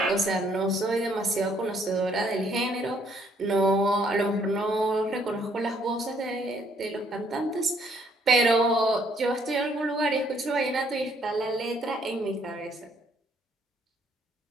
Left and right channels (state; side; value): normal; both; correlation 0.67